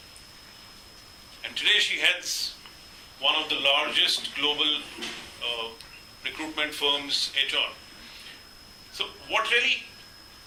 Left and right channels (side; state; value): both; identical; correlation 1.00